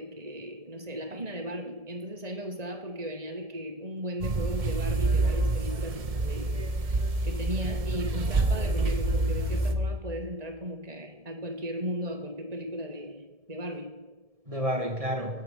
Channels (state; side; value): late; left; 1.7 ms